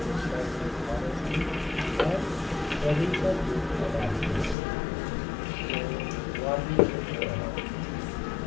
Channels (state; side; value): drops out; right; at 4.5 s